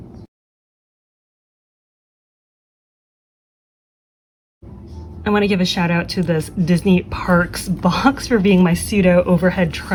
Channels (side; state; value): both; identical; correlation 1.00